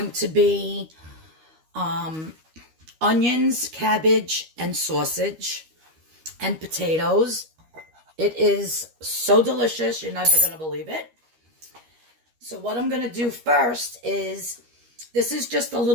to be onions, cabbage, and sausage, and potatoes. It is so delicious, you're never going to believe it. So what I'm going to do first is, this is just a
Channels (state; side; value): late; left; 13 ms